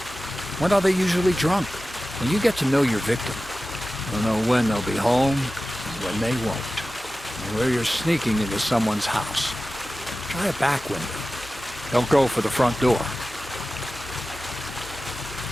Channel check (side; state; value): both; normal; correlation 0.95